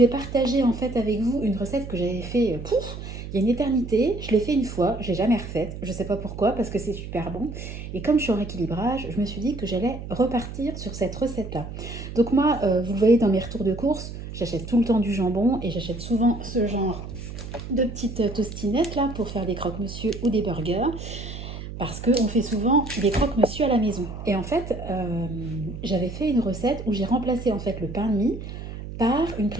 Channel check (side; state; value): right; noise; hum, 9 dB below the sound